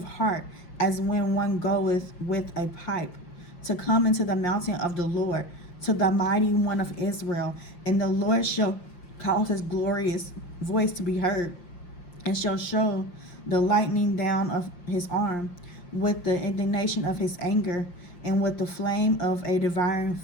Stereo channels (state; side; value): late; right; 5.7 ms